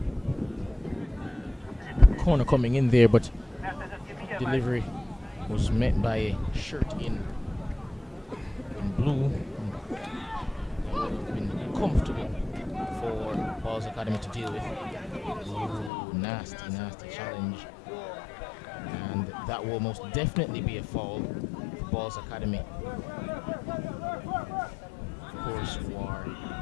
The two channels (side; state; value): right; drops out; at 15.9 s